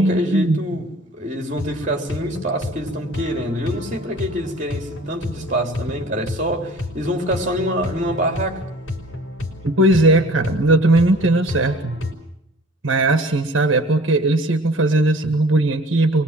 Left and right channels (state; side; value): normal; both; correlation 0.48